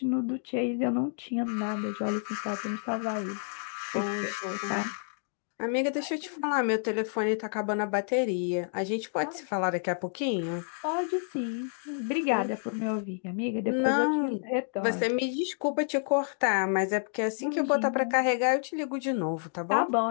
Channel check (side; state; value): right; silent; digital silence